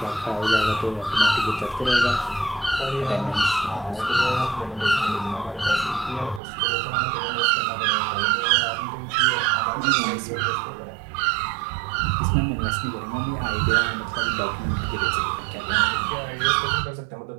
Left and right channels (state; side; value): drops out; left; at 6.4 s